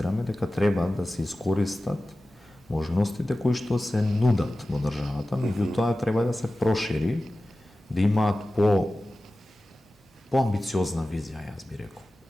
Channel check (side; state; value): both; normal; correlation 0.95